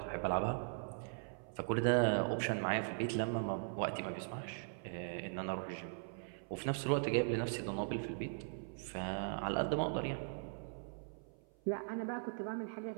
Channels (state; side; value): silent; left; 51 dB below the other